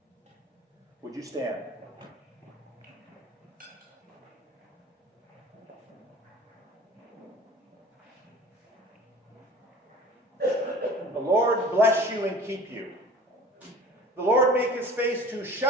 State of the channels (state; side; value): normal; both; correlation 0.43